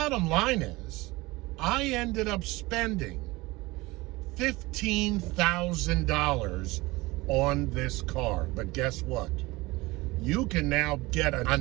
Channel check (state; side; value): quieter; left; 21.5 dB